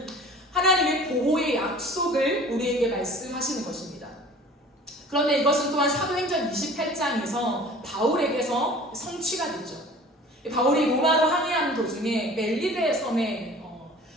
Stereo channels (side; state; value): both; normal; correlation 0.45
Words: 하나님의 보호의 약속을 우리에게 말씀하시는 것입니다. 그런데 이것은 또한 사도행전 28장에서 바울에게서 성취가 되죠. 바울이 로마로 항해하는 도중에 멜리데 섬에